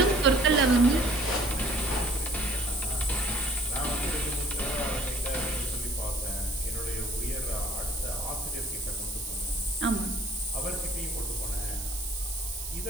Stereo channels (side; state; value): right; noise; hiss, 9 dB below the sound